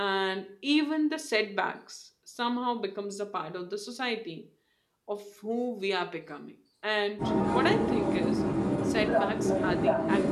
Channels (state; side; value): identical; both; correlation 1.00